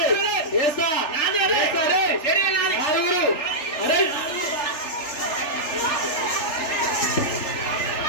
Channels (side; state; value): right; late; 3.4 ms